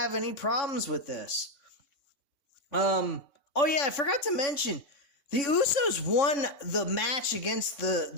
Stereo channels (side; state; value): right; late; 3.5 ms